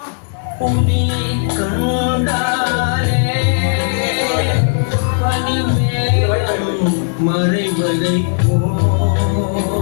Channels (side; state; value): right; silent; digital silence